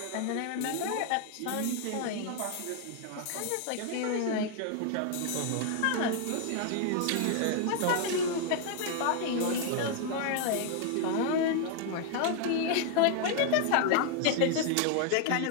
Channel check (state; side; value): different; both; correlation 0.00